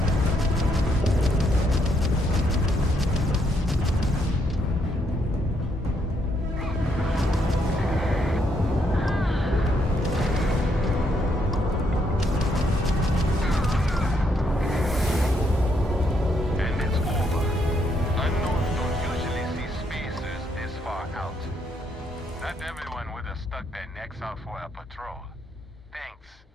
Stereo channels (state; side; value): normal; both; correlation 0.74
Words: Not everyone would have stuck their necks out for a patrol. Thanks.